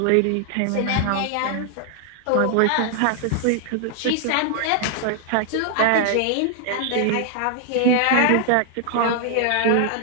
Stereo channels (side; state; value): both; different; correlation 0.00